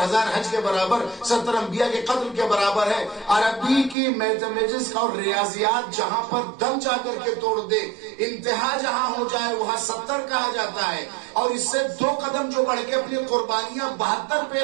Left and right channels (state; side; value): drops out; left; at 4.0 s